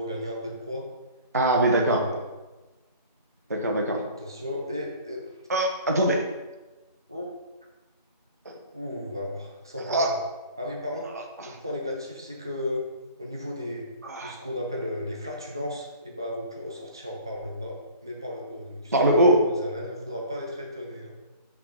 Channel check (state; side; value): inverted; both; correlation -0.45